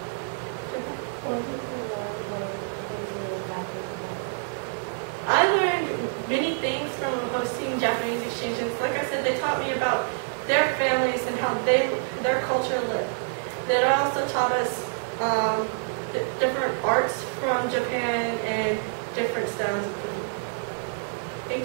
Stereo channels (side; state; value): left; silent; digital silence